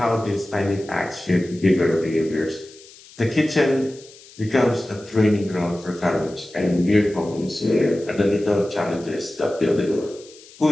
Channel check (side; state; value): left; noise; hiss, 22 dB below the sound